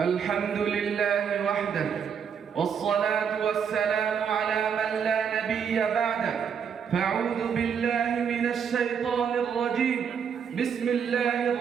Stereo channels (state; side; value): quieter; left; 7.2 dB